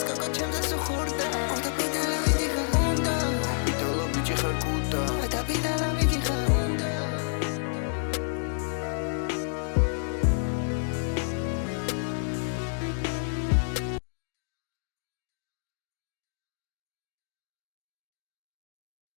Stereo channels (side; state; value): right; silent; digital silence